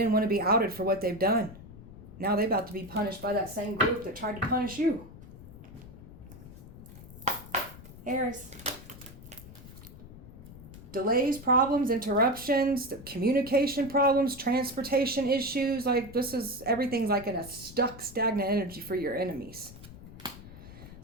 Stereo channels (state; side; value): noise; left; rumble, 16 dB below the sound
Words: want to be outed for what they've done. Now they're about to be punished by that same group that tried to punish you. Aries. Delays, problems, interruptions, communication problems, transportation issues. Like everything's like in a stagnant energy for your enemies.